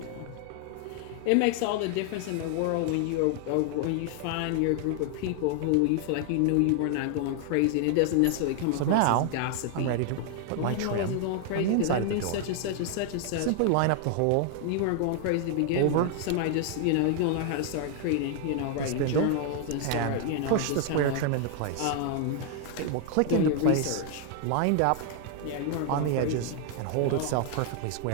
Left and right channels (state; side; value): different; both; correlation 0.00